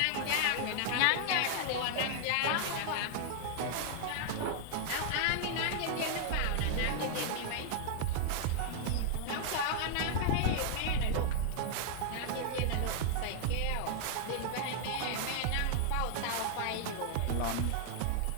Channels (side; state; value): both; different; correlation 0.00